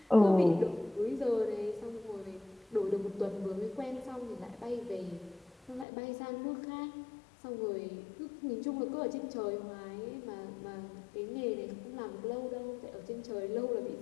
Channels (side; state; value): right; drops out; at 5.9 s